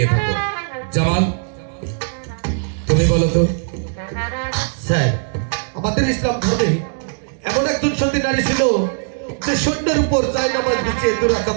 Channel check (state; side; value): silent; left; digital silence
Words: থাকো। জামাল, তুমি বলো তো। স্যার, আমাদের ইসলাম ধর্মে এমন একজন সতী নারী ছিল যে সৈন্যের উপর জায়নামাজ বিছিয়ে দুরাকাত